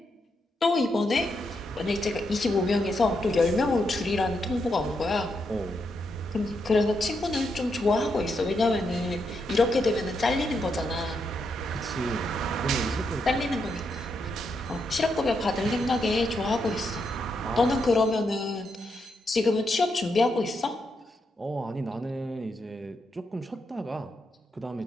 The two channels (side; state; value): both; normal; correlation 0.81